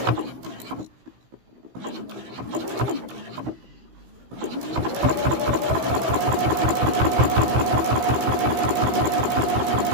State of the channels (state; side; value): late; left; 16 ms